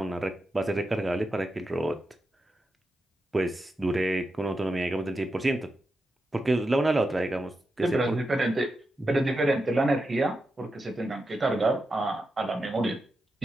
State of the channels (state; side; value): normal; both; correlation 0.88